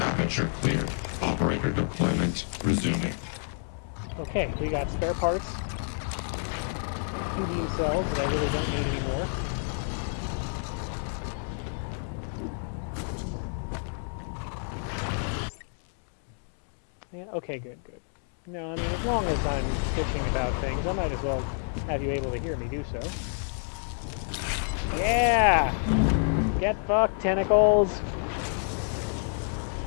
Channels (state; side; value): silent; right; 59 dB below the other